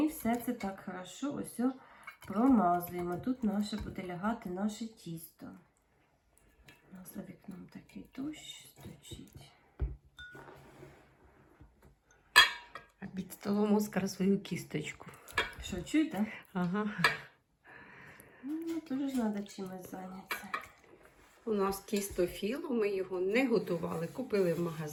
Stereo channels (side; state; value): both; identical; correlation 1.00